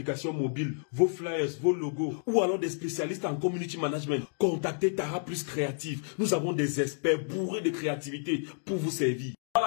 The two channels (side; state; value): right; silent; digital silence